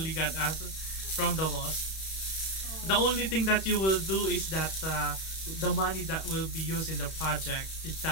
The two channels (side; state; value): right; late; 31 ms